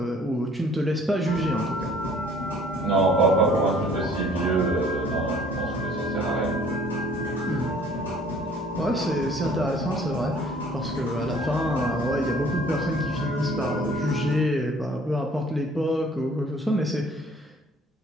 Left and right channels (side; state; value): both; normal; correlation 0.55